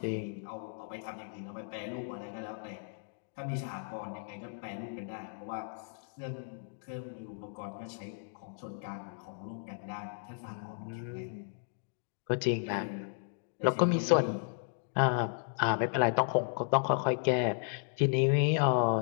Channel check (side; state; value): right; silent; digital silence